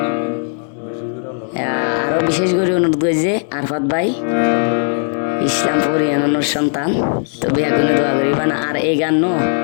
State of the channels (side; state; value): right; silent; 61 dB below the other